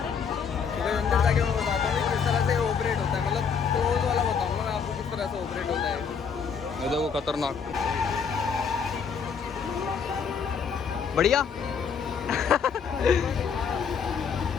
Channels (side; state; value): right; quieter; 6.4 dB